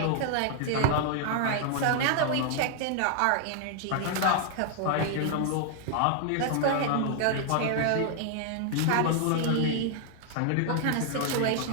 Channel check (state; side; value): different; both; correlation 0.00